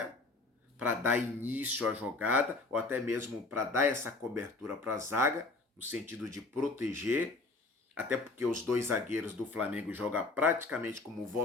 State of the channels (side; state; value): right; quieter; 3.4 dB